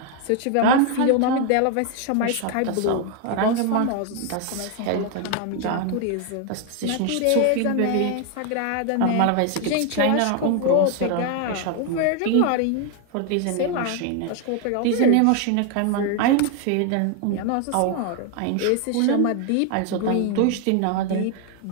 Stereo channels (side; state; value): both; different; correlation 0.01